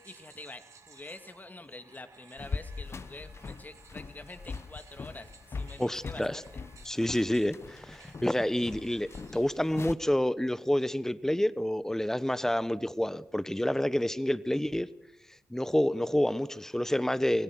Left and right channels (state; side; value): normal; both; correlation 0.98